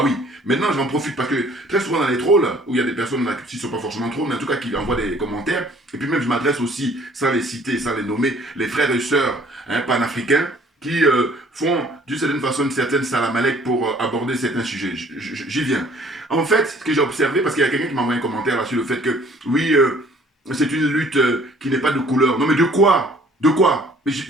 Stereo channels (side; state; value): both; normal; correlation 0.56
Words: oui, maintenant j'en profite parce que très souvent dans les trolls, où il y a des personnes là, qui ne sont pas forcément trolls, mais en tout cas qui envoient des commentaires, et puis même je m'adresse aussi, sans les citer, sans les nommer, les frères et sœurs hein, panafricains, qui font d'une certaine façon une certaine salamalek pour aborder certains sujets. J'y viens. En fait, ce que j'ai observé, parce qu'il y a quelqu'un qui m'a envoyé un commentaire là sur le fait que, oui, c'est une lutte qui n'est pas de couleur. Non mais de quoi? De quoi?